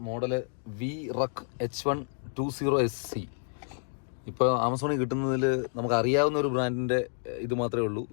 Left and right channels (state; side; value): silent; right; 58 dB below the other